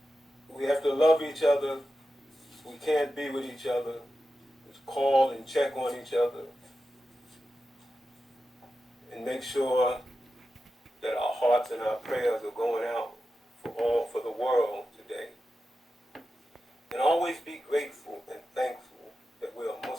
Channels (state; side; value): normal; both; correlation 0.91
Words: we have to love each other. We can't be with each other. Just call and check on each other. And make sure that our hearts and our prayers are going out for the world today. And always be grateful and thankful that we are